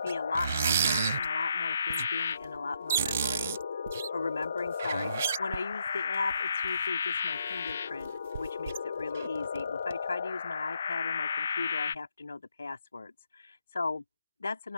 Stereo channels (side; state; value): both; inverted; correlation -0.76